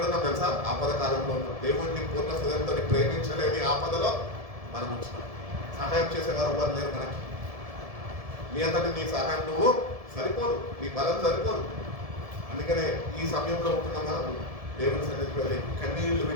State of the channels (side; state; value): left; late; 1.7 ms